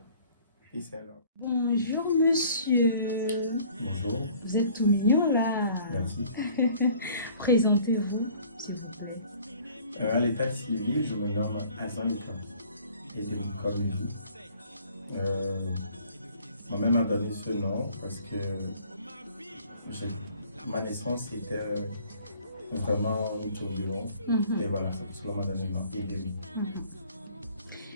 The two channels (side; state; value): both; inverted; correlation -0.54